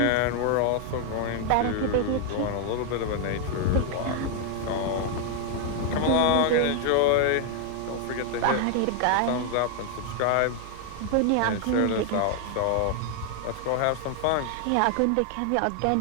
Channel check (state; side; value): different; both; correlation 0.00